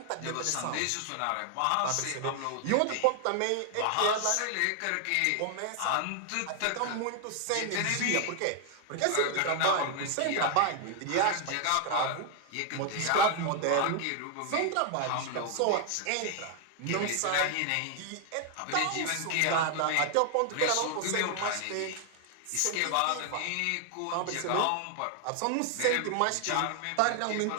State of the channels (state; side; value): different; both; correlation 0.00